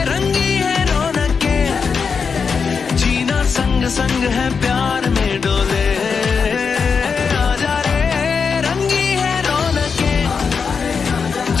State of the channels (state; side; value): quieter; right; 5.7 dB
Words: रंगी है रौनके, जीना संग संग है प्यार में डोले। आजा रे रंगी है रौनके,